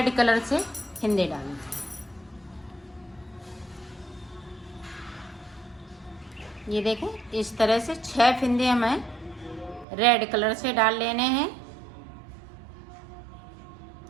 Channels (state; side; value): drops out; left; at 9.9 s